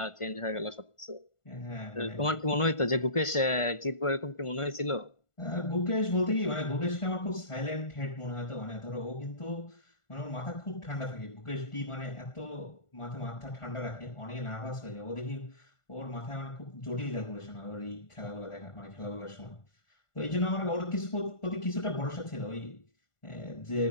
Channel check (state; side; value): late; right; 1.5 ms